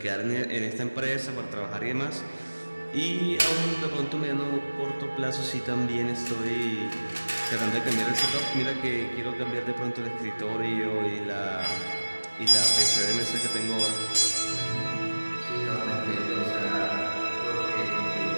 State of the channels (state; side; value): inverted; both; correlation -1.00